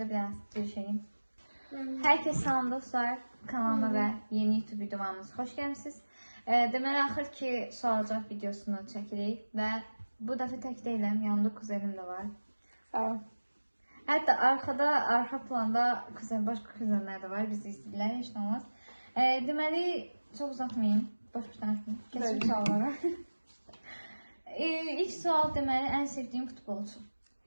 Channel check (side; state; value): both; inverted; correlation -1.00